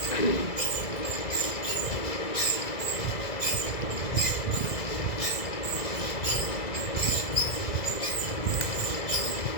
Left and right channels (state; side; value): late; right; 2.0 ms